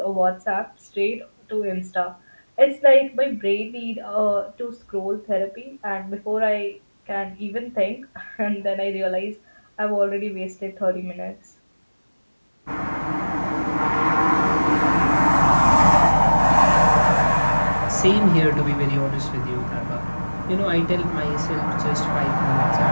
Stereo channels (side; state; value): both; inverted; correlation -1.00